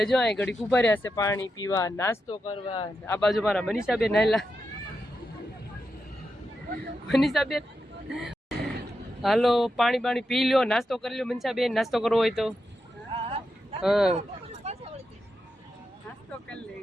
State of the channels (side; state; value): both; normal; correlation 0.87